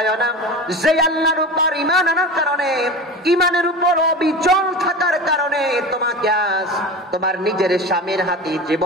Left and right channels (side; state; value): both; normal; correlation 0.30